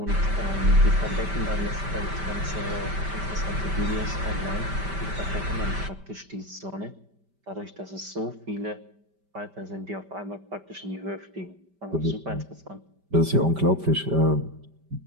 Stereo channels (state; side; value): late; left; 5.1 ms